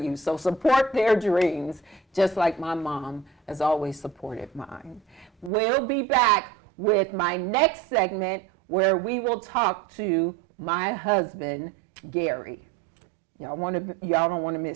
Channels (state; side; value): drops out; left; at 5.5 s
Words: you. So support their dreams, just like my mom has always supported mine. We'll be back with my next segment where we will talk to my husband, Gary. Y'all don't want to